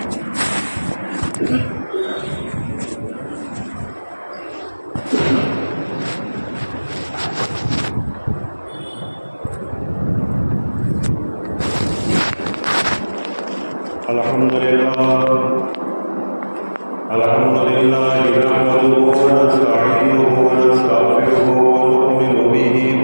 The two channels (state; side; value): inverted; both; correlation -1.00